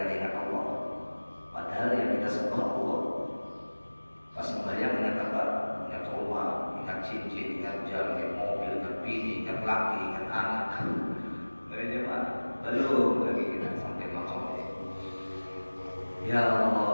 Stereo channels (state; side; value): inverted; both; correlation -1.00